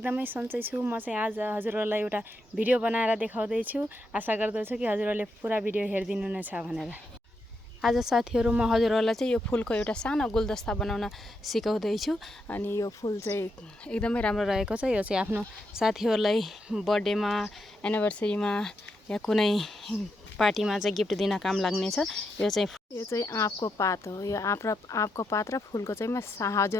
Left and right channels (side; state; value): both; normal; correlation 0.83